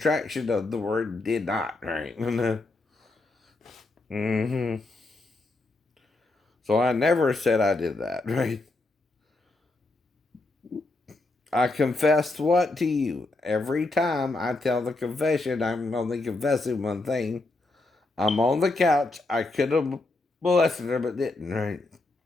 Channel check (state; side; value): quieter; right; 3.1 dB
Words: of the word did not, right? Mm-hmm. So I never said I did that, right? I confessed what to you? Every time I tell the confession, I'm only confessing one thing. I'm on the couch. I could have molested her, but didn't, right?